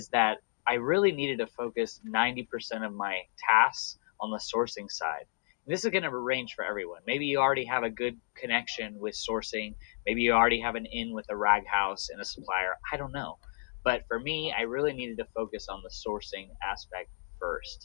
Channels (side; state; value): right; silent; digital silence